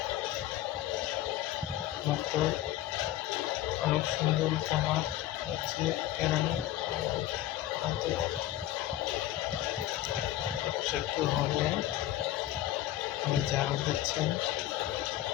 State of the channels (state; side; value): quieter; right; 13.9 dB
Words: মুগ্ধ। অনেক সুন্দর একটা মাঠ হচ্ছে কেরানি, হয়তো একটু হবে যারা দিচ্ছেন।